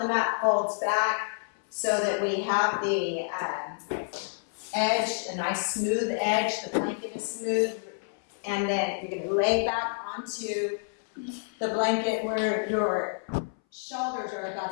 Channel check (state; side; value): silent; right; 59 dB below the other